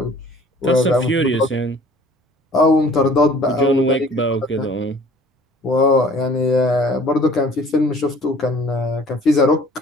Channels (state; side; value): normal; both; correlation 0.51